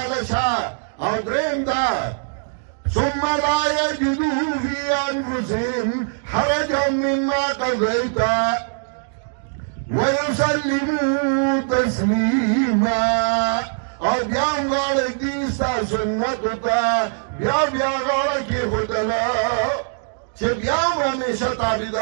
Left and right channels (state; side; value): silent; left; digital silence